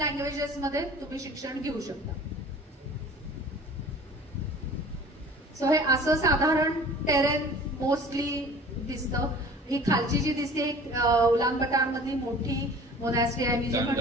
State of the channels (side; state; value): both; normal; correlation 0.45